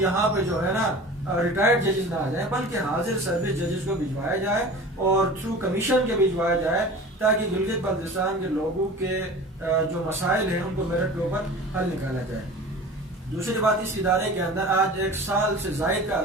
پہ جو ہے نا ریٹائرڈ ججز نہ آ جائیں، بلکہ حاضر سروس ججز کو بھجوایا جائے اور تھرو کمیشن کے بھجوایا جائے، تاکہ گلگت بلتستان کے لوگوں کے جو مسائل ہیں ان کو میرٹ کے اوپر حل نکالا جائے۔ دوسری بات، اس ادارے کے اندر آج 1 سال سے زائد کا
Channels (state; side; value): normal; both; correlation 0.38